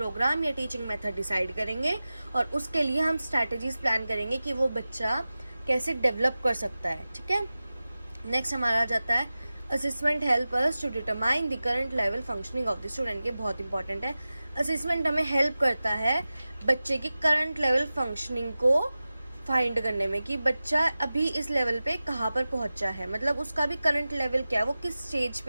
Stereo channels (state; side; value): inverted; both; correlation -0.96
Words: या टीचिंग मेथड डिसाइड करेंगे और उसके लिए हम स्ट्रैटेजीज प्लान करेंगे कि वो बच्चा कैसे डेवलप कर सकता है। ठीक है, नेक्स्ट हमारा आ जाता है assessment help us to determine the current level functioning of the student. ये बहुत इंपॉर्टेंट है। असेसमेंट हमें हेल्प करता है बच्चे की करंट लेवल फंक्शनिंग को फाइंड करने में कि बच्चा अभी इस लेवल पे कहाँ पर पहुंचा है, मतलब उसका भी करंट लेवल क्या है, वो किस स्टेज